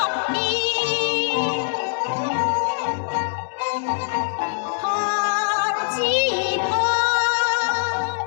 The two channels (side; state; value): right; silent; digital silence